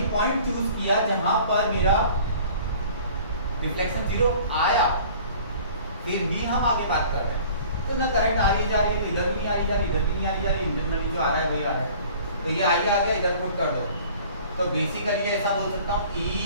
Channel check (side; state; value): both; inverted; correlation -0.48